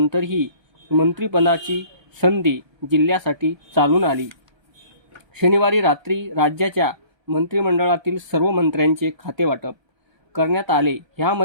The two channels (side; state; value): left; late; 1.3 ms